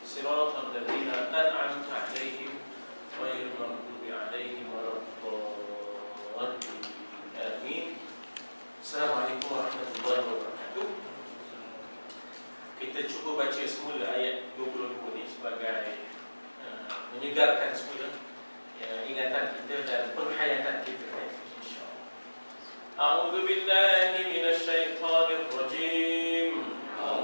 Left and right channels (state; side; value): inverted; both; correlation -1.00